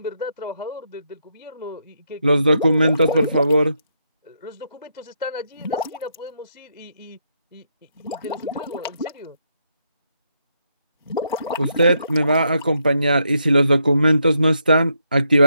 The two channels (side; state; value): both; inverted; correlation -0.79